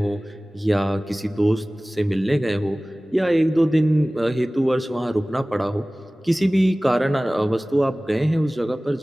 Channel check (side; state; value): both; normal; correlation 0.98